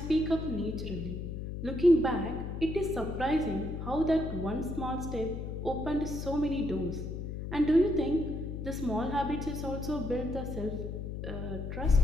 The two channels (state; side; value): noise; left; hum, 5 dB below the sound